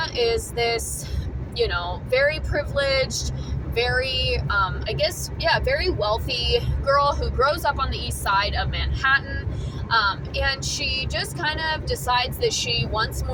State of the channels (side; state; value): both; identical; correlation 1.00